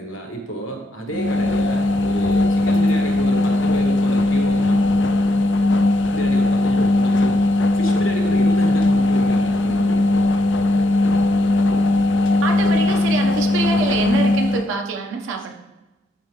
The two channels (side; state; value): both; normal; correlation 0.79